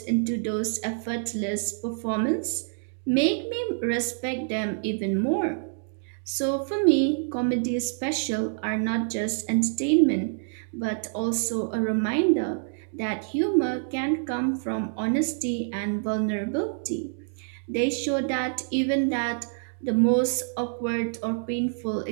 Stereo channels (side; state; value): left; silent; digital silence